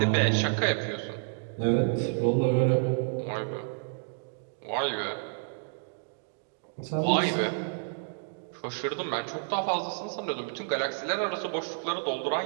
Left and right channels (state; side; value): silent; left; digital silence